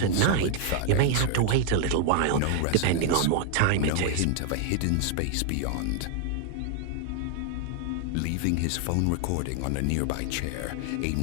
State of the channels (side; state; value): both; different; correlation 0.00